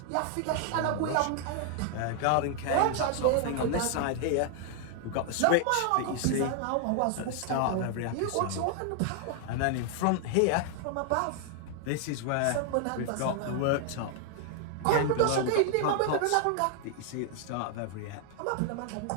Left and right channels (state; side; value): different; both; correlation 0.00